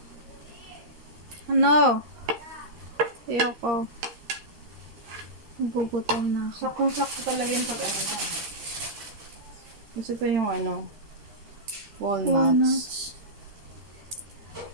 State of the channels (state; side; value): late; left; 13 ms